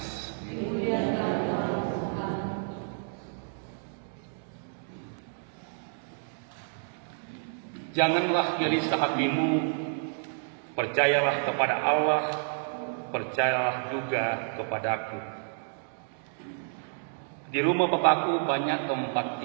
Janganlah gelisah hatimu, percayalah kepada Allah, percayalah juga kepadaku. Di rumah Bapakku banyak tempat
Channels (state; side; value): silent; left; digital silence